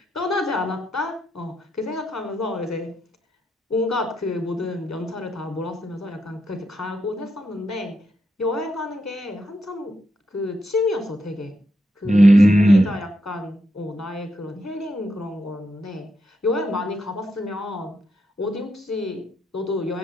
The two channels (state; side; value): normal; both; correlation 0.82